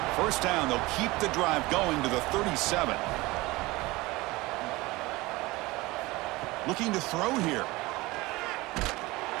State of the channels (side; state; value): left; quieter; 21.2 dB